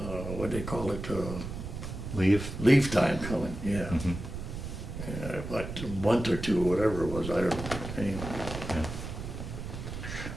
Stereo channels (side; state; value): right; noise; rumble, 7 dB below the sound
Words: what do they call it, leave time coming, yeah. Mhm. Like a month or 2, whatever it was, I don't know, anyway.